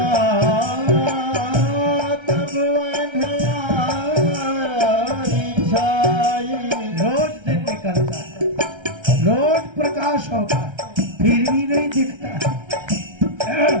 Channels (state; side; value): late; left; 1.3 ms